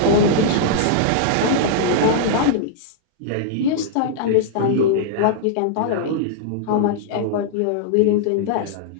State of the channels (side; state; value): both; different; correlation -0.01